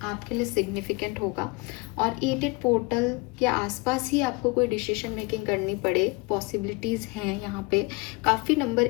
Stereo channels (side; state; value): right; quieter; 26.0 dB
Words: आपके लिए सिग्निफिकेंट होगा, और 8-8 पोर्टल के आसपास ही आपको कोई डिसीजन मेकिंग करनी पड़े, पॉसिबिलिटीज़ हैं यहाँ पे। काफ़ी नंबर